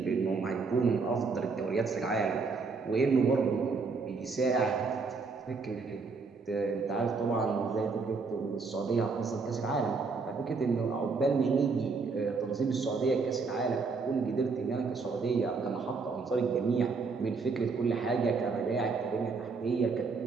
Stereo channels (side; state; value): left; quieter; 4.5 dB